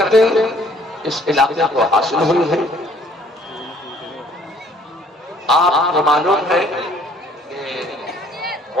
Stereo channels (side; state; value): both; normal; correlation 0.59